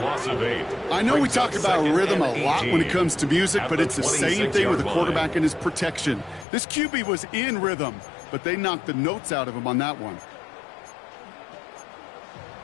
loss of 8. I know we talk about rhythm a lot when it comes to music, but it's the same thing with the quarterback and his protection. This QB was in rhythm, but they knocked the notes out of him on that one.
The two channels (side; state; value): right; drops out; at 6.5 s